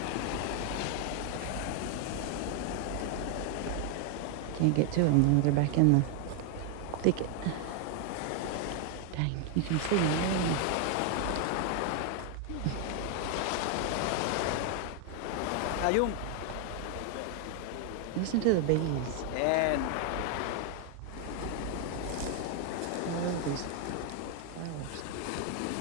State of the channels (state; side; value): different; both; correlation 0.00